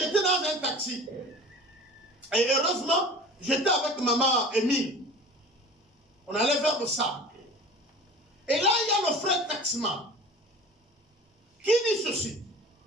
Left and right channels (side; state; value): both; normal; correlation 0.40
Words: dans un taxi. Et heureusement, j'étais avec maman Émile. On allait vers le sable. Et là, il y a le frère taximan qui dit ceci.